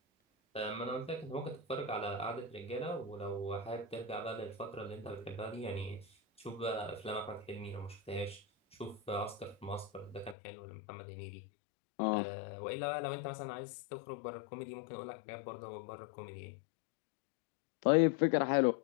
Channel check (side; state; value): right; drops out; at 10.4 s